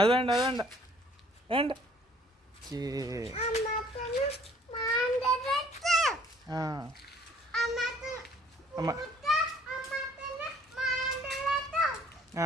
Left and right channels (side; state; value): both; normal; correlation 0.58